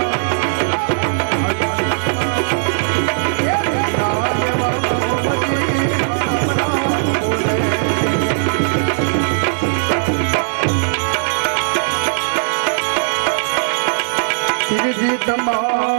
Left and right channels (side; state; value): left; silent; digital silence